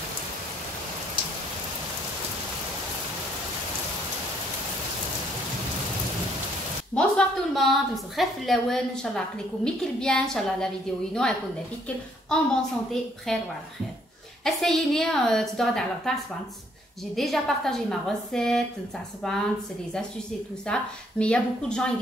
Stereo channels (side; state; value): both; normal; correlation 0.67